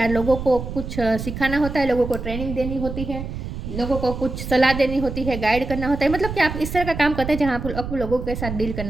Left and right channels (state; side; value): noise; right; rumble, 7 dB below the sound